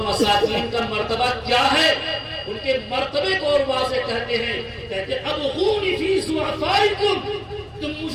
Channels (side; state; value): both; identical; correlation 1.00